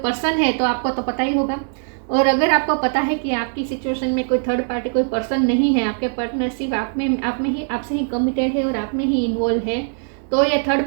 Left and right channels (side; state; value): left; silent; 65 dB below the other